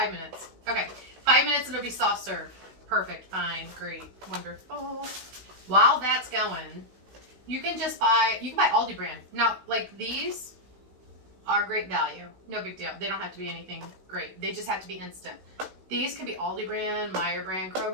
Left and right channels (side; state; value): left; late; 16 ms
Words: minutes. Okay, 5 minutes and it'll be soft serve. Perfect, fine, great, wonderful. While that's going, you can buy Aldi brand. Now, like these are great value. No big deal. They don't have to be anything great. They just have to be instant. These can be Aldi brand, Meyer brand,